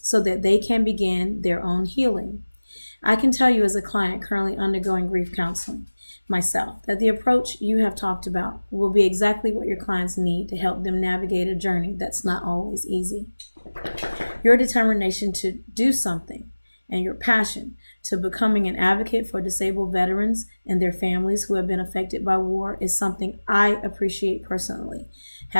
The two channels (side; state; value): both; inverted; correlation -1.00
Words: so that they can begin their own healing. I can tell you, as a client currently undergoing grief counseling myself, that the approach you have talked about will be exactly what your clients need to help them navigate a journey that's not always easy. Your determination to do something and your passion to becoming an advocate for disabled veterans and their families who have been affected by war is something I appreciate personally,